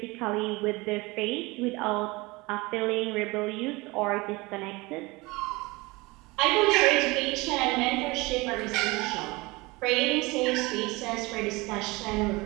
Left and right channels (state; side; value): quieter; left; 23.5 dB